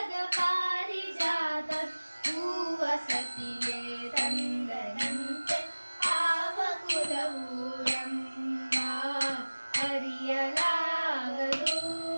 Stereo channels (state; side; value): inverted; both; correlation -1.00